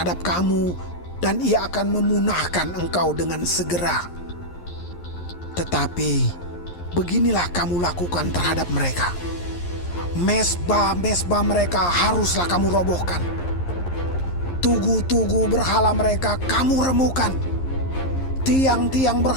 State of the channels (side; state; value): right; late; 11 ms